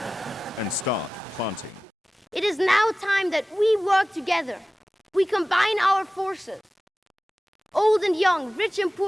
and start planting. It is now time that we work together. We combine our forces, old and young, rich and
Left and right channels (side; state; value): both; normal; correlation 0.95